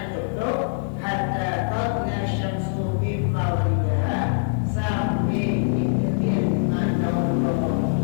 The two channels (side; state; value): right; silent; 63 dB below the other